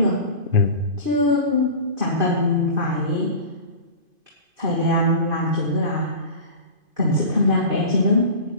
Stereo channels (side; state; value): left; late; 2.5 ms